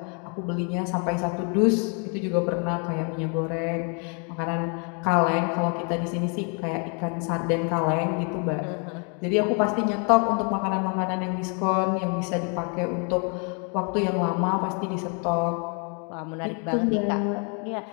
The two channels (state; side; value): quieter; right; 37.9 dB